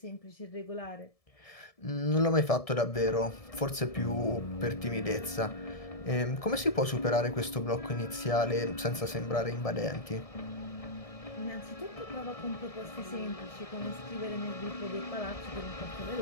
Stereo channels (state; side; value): late; right; 1.7 ms